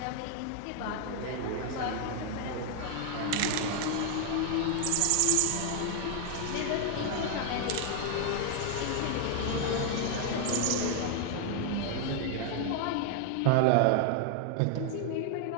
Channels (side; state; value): both; different; correlation 0.00